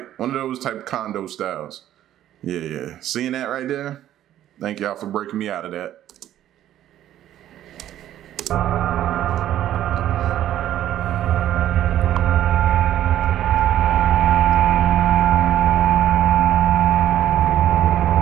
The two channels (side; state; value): left; quieter; 12.1 dB